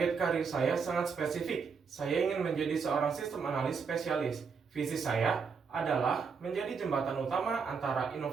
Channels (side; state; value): left; quieter; 5.7 dB